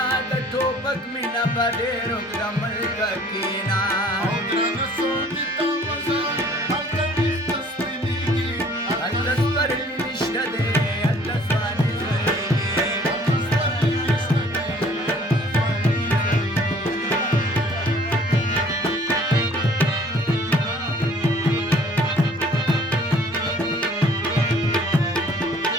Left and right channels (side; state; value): both; normal; correlation 0.55